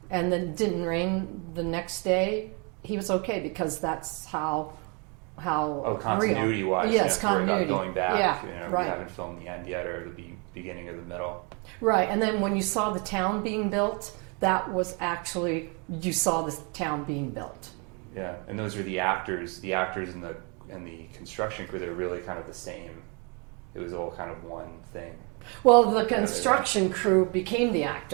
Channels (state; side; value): quieter; left; 33.6 dB